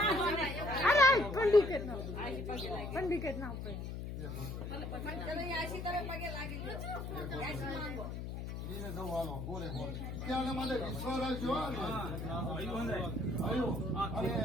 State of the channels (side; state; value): left; noise; hum, 6 dB below the sound